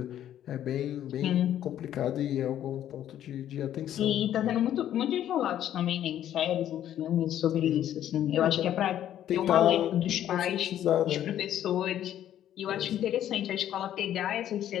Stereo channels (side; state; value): right; quieter; 11.3 dB